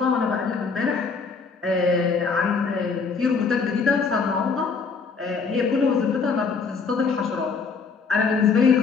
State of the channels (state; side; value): quieter; right; 5.1 dB